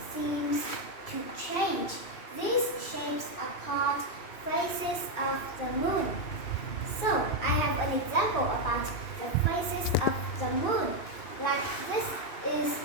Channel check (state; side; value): late; right; 2.6 ms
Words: seems to change. These shapes are called phases of the moon. So, I have an example about the phases of the moon. Like this is